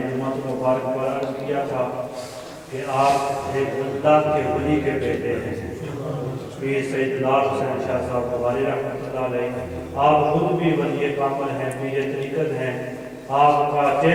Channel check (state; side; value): identical; both; correlation 1.00